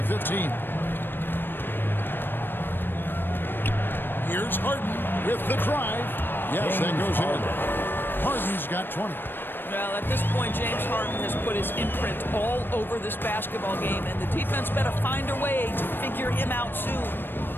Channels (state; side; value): late; right; 0.097 ms